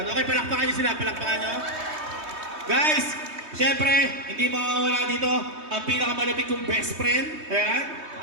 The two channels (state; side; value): late; left; 3.2 ms